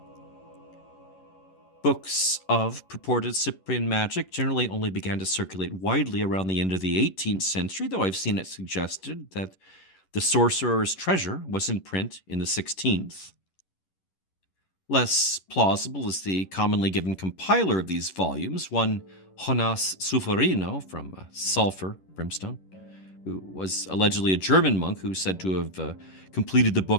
Books of purported Cyprian magic generally only began to circulate widely around the end of the 18th century, though I've seen it suggested that The Sorcerer's Treasure was in print in the 16th. Less plausible is the commonly given compiler of these volumes, one Jonas Sulfurino from Sulfur, Brimstone, who was allegedly a German monk who's said to have completed the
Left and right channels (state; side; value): late; right; 11 ms